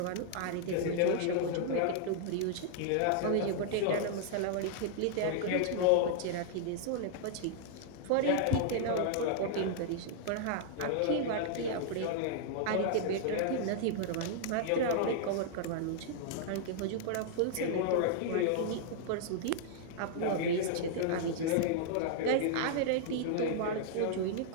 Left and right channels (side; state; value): both; different; correlation -0.01